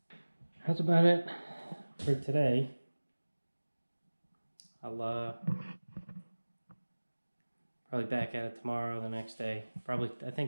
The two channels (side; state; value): both; inverted; correlation -1.00